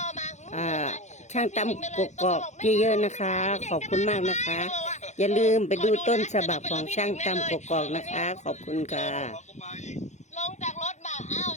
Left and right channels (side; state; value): right; late; 0.34 ms